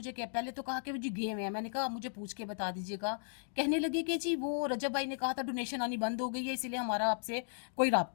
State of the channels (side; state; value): right; silent; digital silence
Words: क्या, पहले तो कहा कि जी गेम है, मैंने कहा मुझे पूछ के बता दीजिएगा। कहने लगे कि जी वो रजब भाई ने कहा था डोनेशन आनी बंद हो गई है, इसीलिए हमारा आपसे कोई